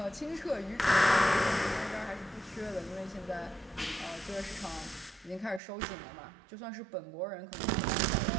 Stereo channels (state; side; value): drops out; left; at 5.6 s